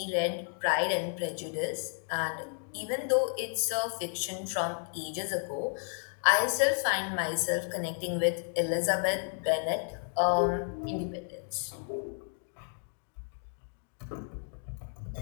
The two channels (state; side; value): silent; right; 56 dB below the other